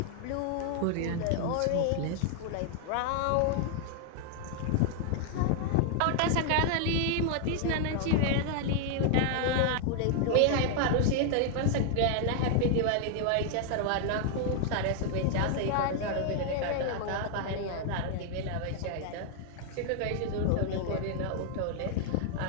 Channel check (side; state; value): both; different; correlation 0.00